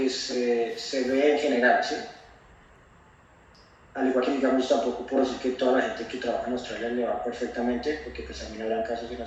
se ve en general, ¿sí? Al igual que digamos tampoco puedo decir que toda la gente que trabaja en Australia le va perfectamente, porque pues también habrán casos en los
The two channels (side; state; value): both; identical; correlation 1.00